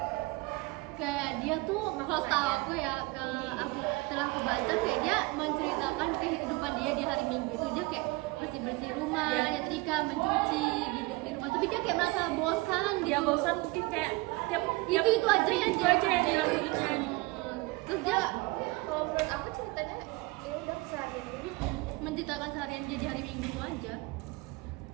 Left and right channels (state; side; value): quieter; left; 23.3 dB